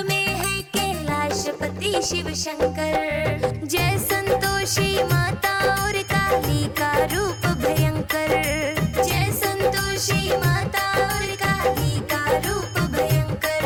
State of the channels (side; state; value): both; identical; correlation 1.00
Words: में है कैलाशपति शिव शंकर। जय संतोषी माता और काली का रूप भयंकर। जय संतोषी माता और काली का रूप भयंकर।